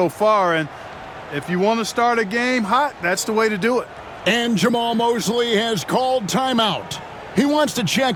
far, and if you want to start a game hot, that's the way to do it. And Jamal Mosley has called timeout. He wants to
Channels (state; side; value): identical; both; correlation 1.00